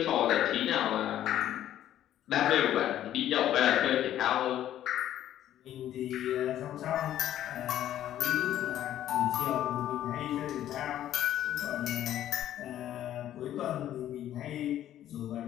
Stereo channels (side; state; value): right; quieter; 12.0 dB